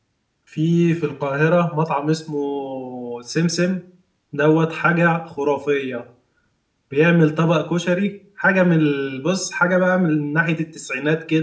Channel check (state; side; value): identical; both; correlation 1.00